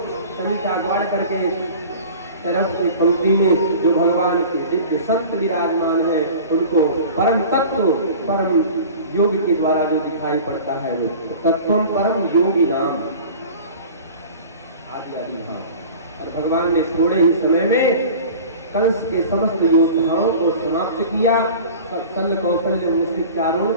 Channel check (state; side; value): inverted; both; correlation -0.40